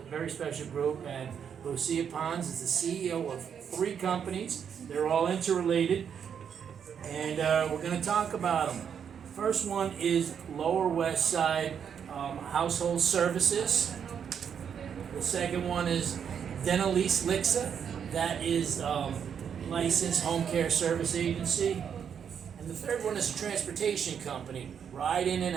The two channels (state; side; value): quieter; left; 7.8 dB